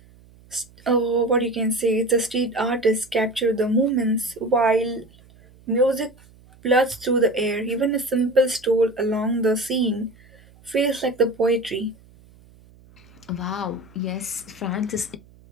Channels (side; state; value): right; noise; hum, 26 dB below the sound